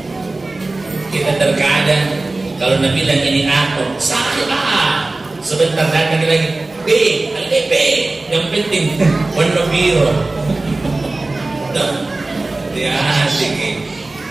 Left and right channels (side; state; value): left; quieter; 3.1 dB